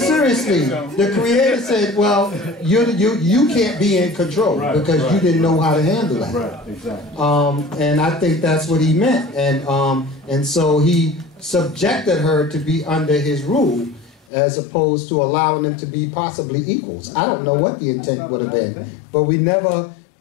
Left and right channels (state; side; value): drops out; right; at 14.2 s